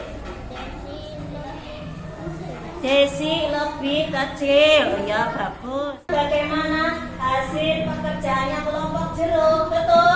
Desi lebih kecil. Ya, bagus. Bagaimana hasil pekerjaannya kelompok jeruk?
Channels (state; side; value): identical; both; correlation 1.00